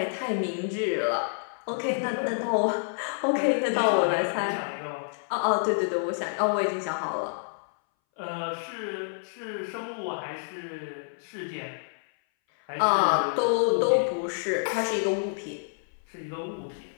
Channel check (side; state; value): right; silent; 59 dB below the other